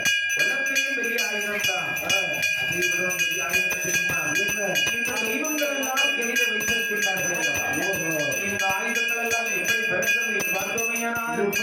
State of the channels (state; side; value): identical; both; correlation 1.00